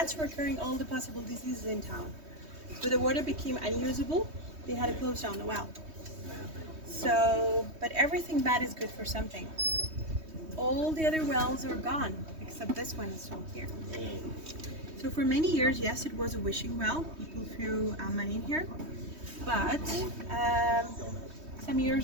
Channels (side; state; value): left; late; 3.2 ms